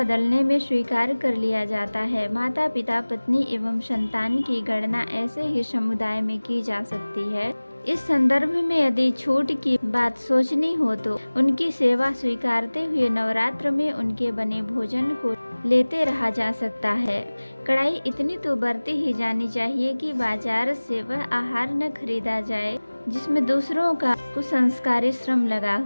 में स्वीकार कर लिया जाता है। माता पिता, पत्नी एवं संतान की गणना ऐसे ही समुदाय में की जा सकती है। इस संदर्भ में यदि छूट की बात सोचनी हो तो उनकी सेवा स्वीकारते हुए नवरात्र में उनके बने भोजन को लेते रहा जा सकता है। कड़ाई इतनी तो बरती ही जानी चाहिए कि बाजार से वह आहार न खरीदा जाए जिसमें दूसरों का कुसंस्कारी श्रम लगा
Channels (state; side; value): inverted; both; correlation -1.00